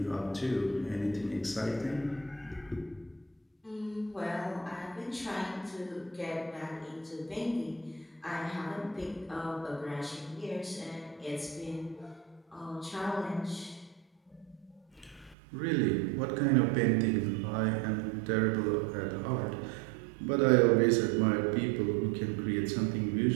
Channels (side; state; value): left; drops out; at 15.4 s